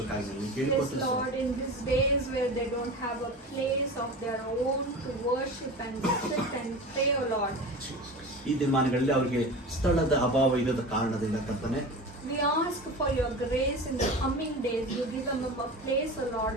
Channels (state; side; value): normal; both; correlation 0.32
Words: Yes, ಕೇಳಿಕೊಳ್ತೇವೆ. Lord, in these days where they don't have a place of their own to worship and sit and pray, O Lord, ಈ ದಿನಮಾನಗಳಲ್ಲಿ ಅವರಿಗೆ ಸ್ಥಳದ ಅಭಾವ ಇರದ ಕಾರಣದಿಂದ ಕರ್ತನೆ we ask for your grace in the coming days. You give them a place, O Lord,